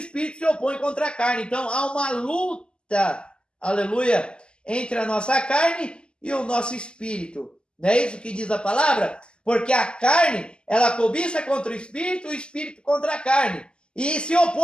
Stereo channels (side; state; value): right; late; 0.050 ms